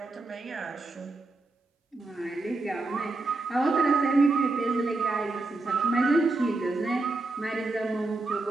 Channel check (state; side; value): quieter; left; 3.2 dB